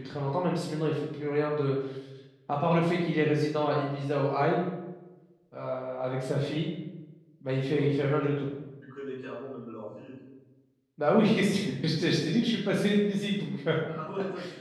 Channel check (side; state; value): both; identical; correlation 1.00